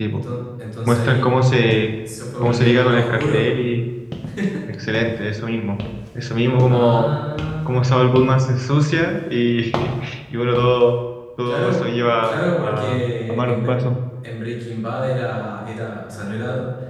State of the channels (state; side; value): identical; both; correlation 1.00